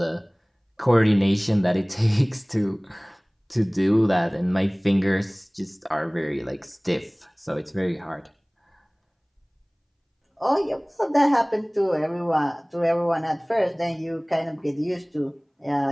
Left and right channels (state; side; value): identical; both; correlation 1.00